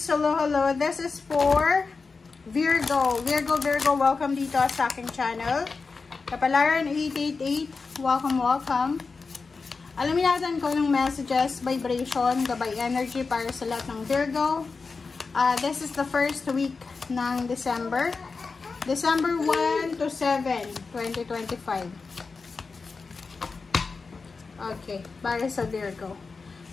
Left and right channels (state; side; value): quieter; right; 4.5 dB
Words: Hello! This is for Virgo. Virgo, welcome dito sa aking channel. Kapalaran 888, welcome. Alamin natin ko ng messages, vibration, gabay energy para sa lahat ng Virgo. This is the first week ng December. December 1 to 7, 2025. Okay, para sa Virgo.